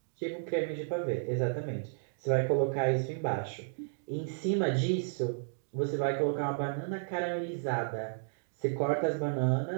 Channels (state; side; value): silent; left; digital silence